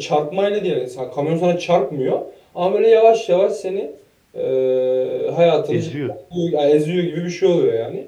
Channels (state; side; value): identical; both; correlation 1.00